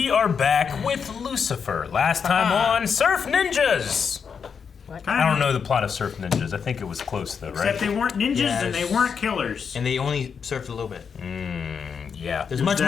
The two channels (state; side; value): quieter; right; 6.4 dB